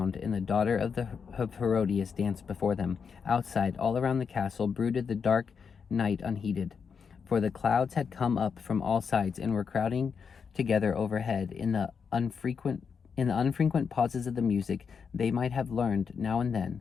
and the daughter of Herodias danced before them. Outside, all around the castle, brooded the dark night unheeded, for the clouds had come up from all sides and were crowding together overhead. In the unfrequent pauses of the music, they might have learned, now and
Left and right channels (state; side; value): quieter; right; 6.2 dB